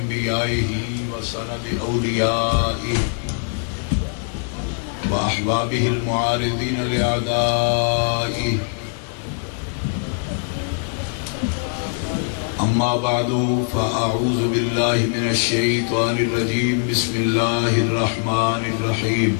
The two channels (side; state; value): right; silent; 61 dB below the other